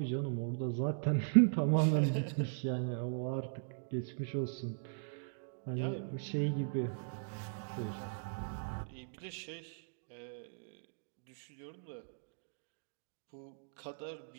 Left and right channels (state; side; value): silent; left; digital silence